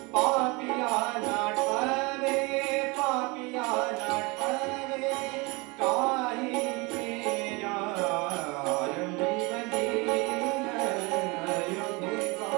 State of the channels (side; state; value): left; quieter; 26.5 dB